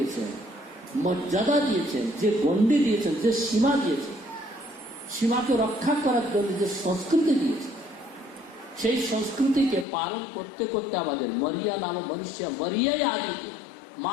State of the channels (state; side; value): drops out; right; at 9.9 s